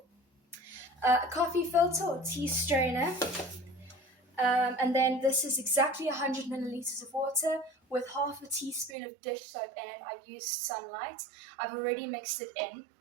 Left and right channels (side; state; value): left; drops out; at 9.0 s